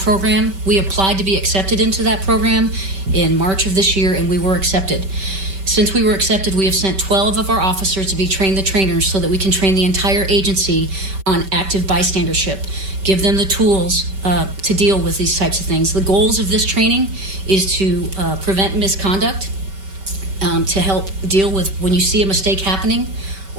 We applied to be accepted into that program in March of this year, and we were accepted. Since we were accepted, we have sent 12 of our officers to be trained the trainers so that we can train the entire agency on active bystandership, give them the tools to deal with these types of things. The goals of this training is to prevent misconduct, to help deal with when you see a mistake happening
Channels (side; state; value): left; late; 5.2 ms